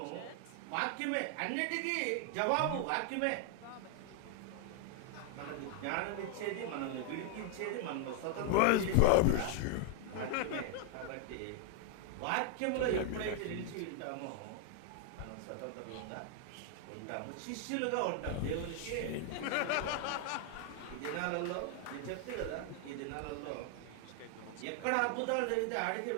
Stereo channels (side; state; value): both; different; correlation 0.00